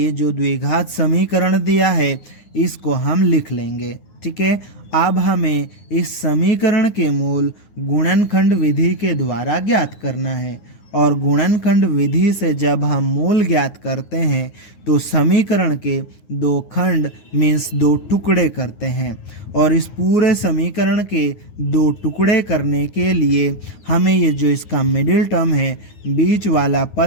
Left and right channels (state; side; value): late; right; 9.5 ms